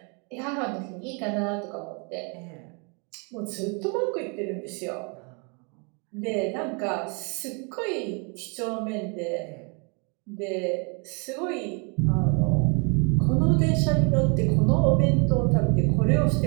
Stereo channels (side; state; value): left; quieter; 34.7 dB